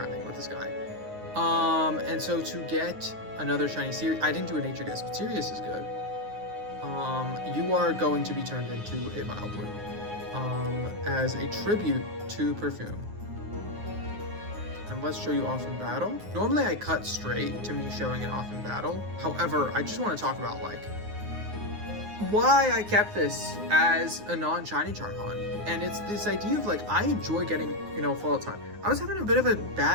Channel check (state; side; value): late; left; 9.6 ms